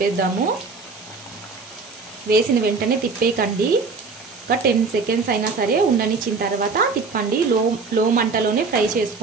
వేసిన వెంటనే తిప్పేయకండి. ఒక 10 సెకండ్స్ అయినా సరే ఉండనిచ్చిన తర్వాత తిప్పండి. లో మంటలోనే ఫ్రై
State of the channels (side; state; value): left; quieter; 4.4 dB